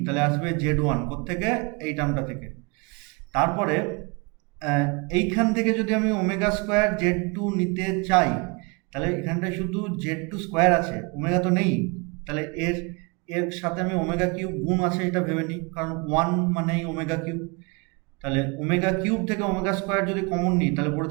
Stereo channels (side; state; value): left; quieter; 30.0 dB